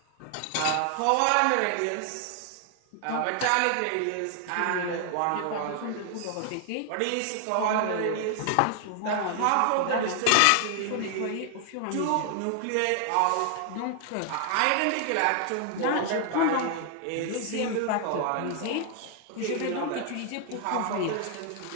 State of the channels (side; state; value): both; different; correlation 0.00